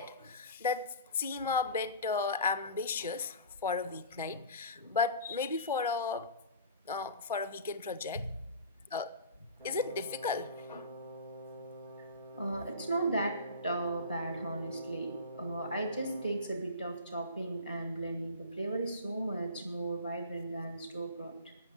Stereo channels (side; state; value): both; inverted; correlation -0.36